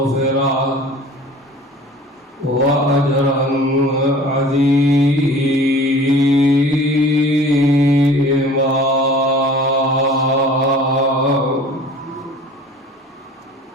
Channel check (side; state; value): both; normal; correlation 0.45